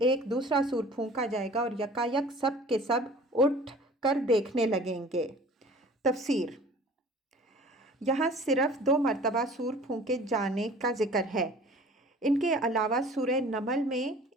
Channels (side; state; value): both; normal; correlation 0.47